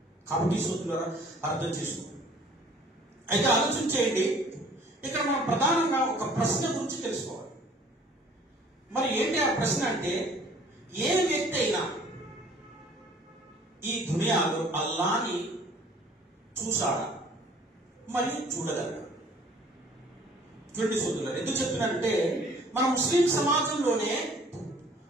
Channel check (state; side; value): normal; both; correlation 0.54